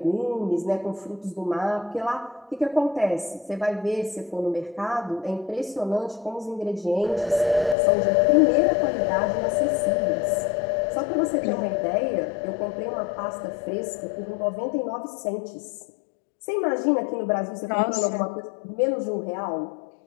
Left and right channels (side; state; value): right; drops out; at 7.8 s